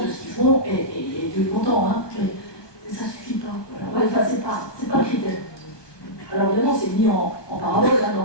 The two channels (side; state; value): right; late; 1.2 ms